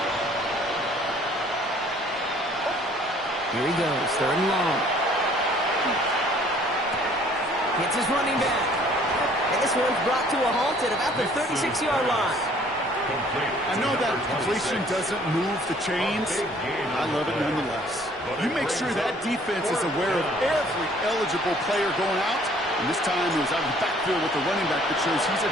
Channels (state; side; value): normal; both; correlation 0.57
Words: Here he goes, 3rd and long. Hits his running back. And this one's brought to a halt at about the 36-yard line. I know that completion doesn't move the chains. I love it nonetheless. You make sure that defense is aware of every eligible player going out. And this time it was out of the backfield with the running back that shows he's